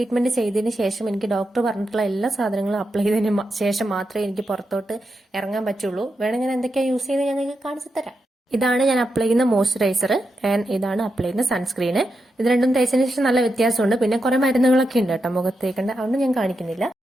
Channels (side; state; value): both; normal; correlation 0.86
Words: ചെയ്തതിന് ശേഷം എനിക്ക് ഡോക്ടർ പറഞ്ഞിട്ടുള്ള എല്ലാ സാധനങ്ങളും അപ്ലൈ ചെയ്തതിന് ശേഷം മാത്രമേ എനിക്ക് പുറത്തോട്ട് ഇറങ്ങാൻ പറ്റുള്ളൂ. വേണമെങ്കിൽ ഞാൻ എന്തൊക്കെയാണ് യൂസ് ചെയ്ത് ഞാൻ നിങ്ങൾക്ക് കാണിച്ചു തരാം. ഇതാണ് ഞാൻ അപ്ലൈ ചെയ്യുന്ന മോയ്സ്ചറൈസർ ആൻഡ് ഇതാണ് അപ്ലൈ ചെയ്യുന്ന സൺസ്ക്രീന്. ഇത് രണ്ടും തേച്ചതിന് ശേഷം നല്ല വ്യത്യാസമുണ്ട്. പിന്നെ കുറെ മരുന്നുകളൊക്കെ ഉണ്ട് കേട്ടോ മുഖത്തേക്കേണ്ട, അതുകൊണ്ട് ഞാൻ കാണിക്കുന്നില്ല.